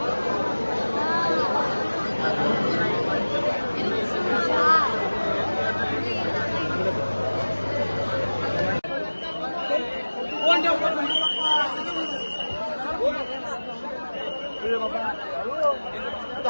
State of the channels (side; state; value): both; inverted; correlation -1.00